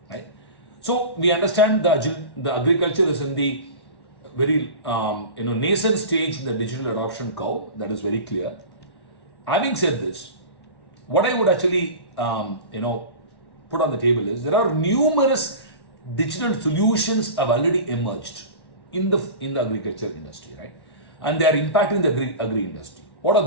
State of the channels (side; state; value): right; late; 1.1 ms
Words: right? So we understand the agriculture is in the very nascent stage in the digital adoption curve. That is very clear. Having said this, what I would actually put on the table is there are numerous digital solutions have already emerged in the agriculture industry, right? And they are impacting the agri industry. What are